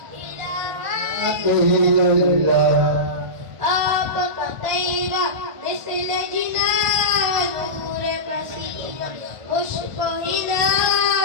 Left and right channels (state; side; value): late; left; 1.5 ms